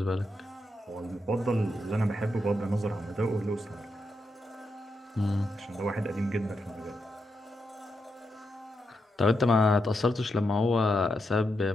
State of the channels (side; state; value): both; normal; correlation 0.84